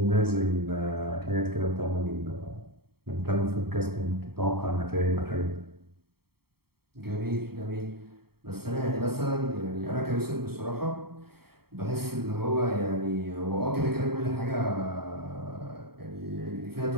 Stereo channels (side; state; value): left; late; 0.95 ms